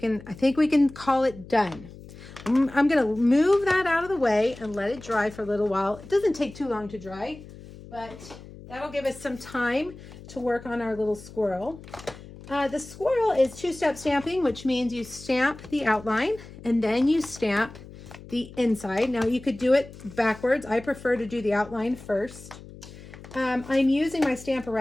can call it done. I'm going to move that out of the way and let it dry for a little while. It doesn't take too long to dry, but that'll give us some time to work on our little squirrel. The squirrel is two-step stamping, which means you stamp the outline and then you stamp the inside. Now you could do it backwards. I prefer to do the outline first. I'm using my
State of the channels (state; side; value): noise; left; hum, 17 dB below the sound